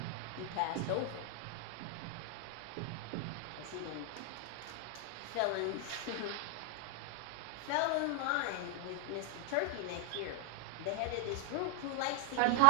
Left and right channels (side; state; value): both; different; correlation 0.00